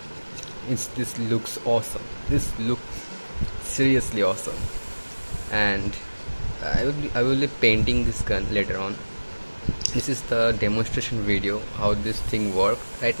this looks awesome. This looks seriously awesome, and I will be painting this gun later on. This is the demonstration video how this thing works. Right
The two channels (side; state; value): both; inverted; correlation -1.00